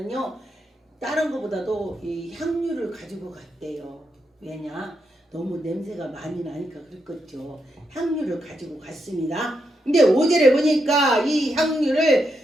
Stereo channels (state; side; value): normal; both; correlation 0.82